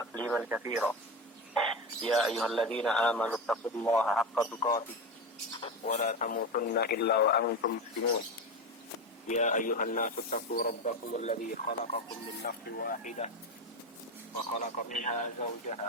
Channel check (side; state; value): both; normal; correlation 0.19